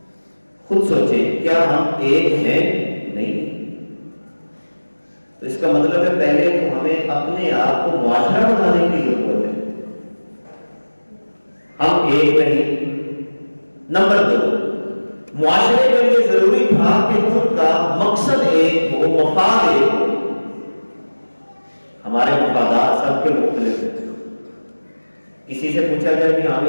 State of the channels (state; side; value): inverted; both; correlation -1.00